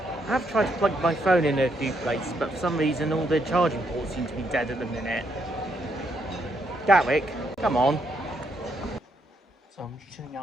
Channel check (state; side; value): normal; both; correlation 0.75